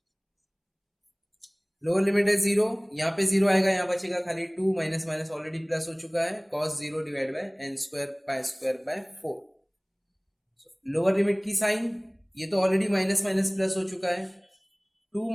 लोअर लिमिट है 0, यहाँ पे 0 आएगा, यहाँ बचेगा खाली 2, माइनस माइनस ऑलरेडी प्लस हो चुका है, cos 0 divide by n square pi square by 4। Lower limit की साइन, ये तो ऑलरेडी माइनस माइनस प्लस हो चुका है, 2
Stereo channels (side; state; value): both; identical; correlation 1.00